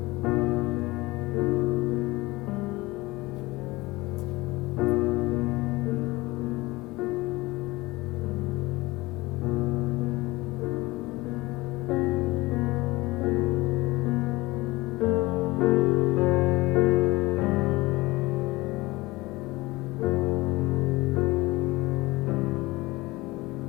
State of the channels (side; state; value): right; quieter; 21.0 dB